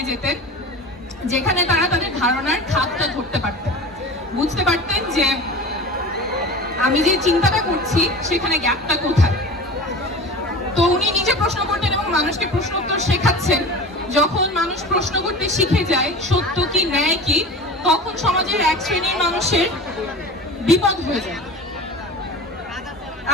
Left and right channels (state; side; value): normal; both; correlation 0.34